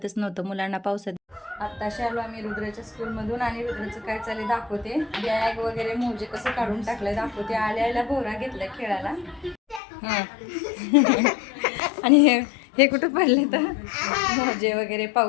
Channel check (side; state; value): right; drops out; at 9.8 s